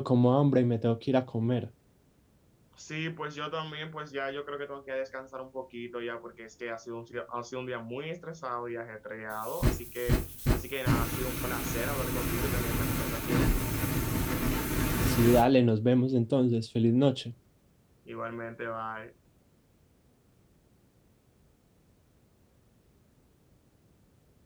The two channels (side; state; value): both; identical; correlation 1.00